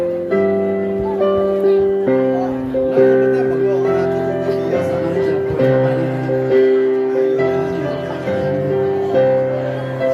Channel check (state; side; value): identical; both; correlation 1.00